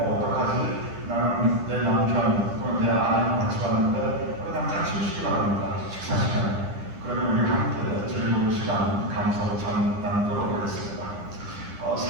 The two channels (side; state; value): left; late; 10 ms